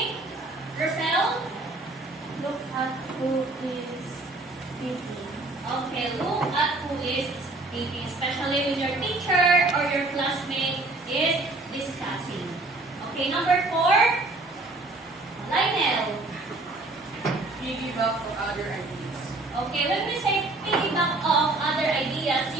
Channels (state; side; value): quieter; left; 3.0 dB